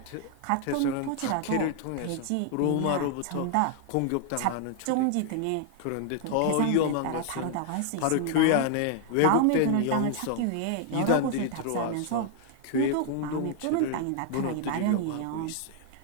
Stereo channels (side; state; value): both; different; correlation 0.00